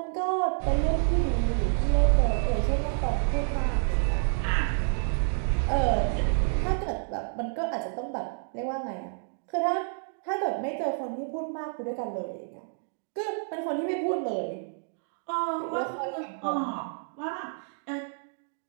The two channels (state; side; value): silent; left; digital silence